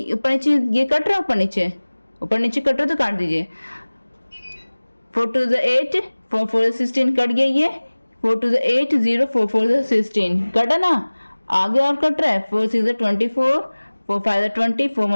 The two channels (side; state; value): both; inverted; correlation -1.00